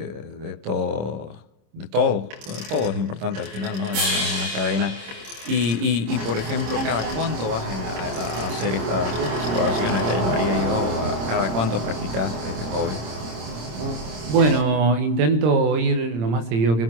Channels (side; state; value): left; late; 26 ms